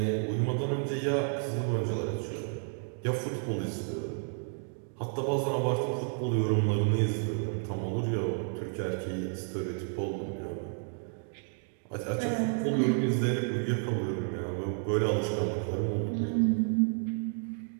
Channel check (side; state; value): left; silent; 57 dB below the other